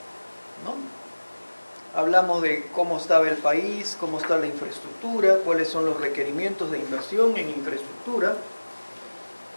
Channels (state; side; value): inverted; both; correlation -1.00